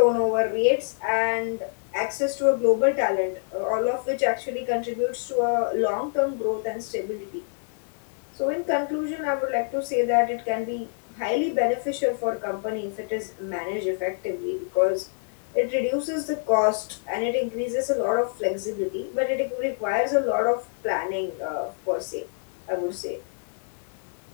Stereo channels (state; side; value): silent; right; digital silence